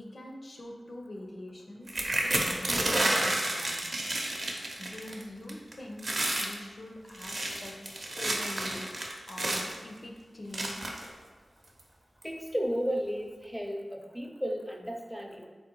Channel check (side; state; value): both; normal; correlation 0.95